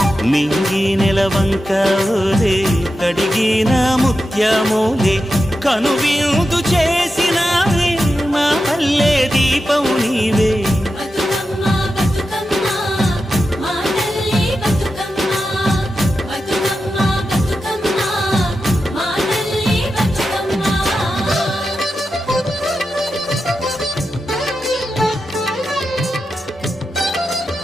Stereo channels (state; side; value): normal; both; correlation 0.90